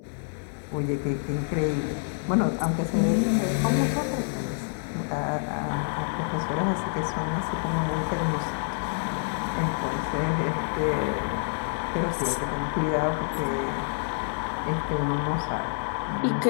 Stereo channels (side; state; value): right; silent; digital silence